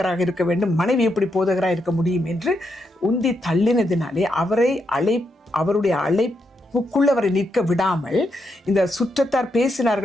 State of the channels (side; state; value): both; normal; correlation 0.81